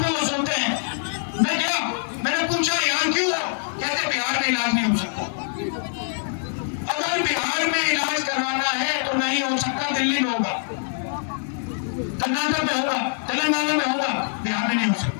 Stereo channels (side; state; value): right; silent; digital silence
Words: पे वो सोते हैं। मैं गया, मैंने पूछा यहाँ क्यों हो, कहते बिहार में इलाज नहीं हो सकता। अगर बिहार में इलाज करवाना है तो नहीं हो सकता, दिल्ली में होगा, कर्नाटक में होगा, तेलंगाना में होगा, बिहार में नहीं हो सकता।